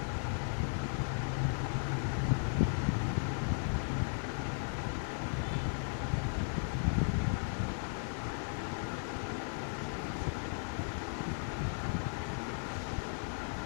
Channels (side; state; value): right; silent; 54 dB below the other